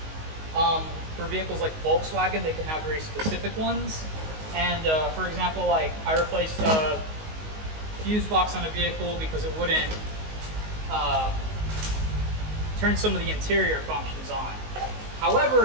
For vehicles like Volkswagen, they can have very specific ones. And for example, like I replaced a fuse box on a vehicle because it wouldn't turn some of the interior functions on.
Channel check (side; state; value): left; late; 19 ms